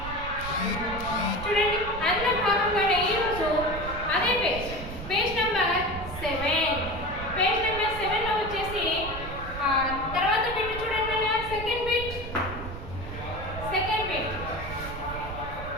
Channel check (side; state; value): right; noise; rumble, 9 dB below the sound